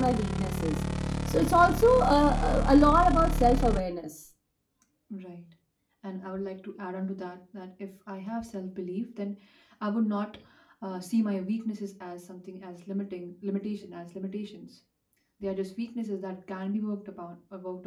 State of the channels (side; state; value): both; identical; correlation 1.00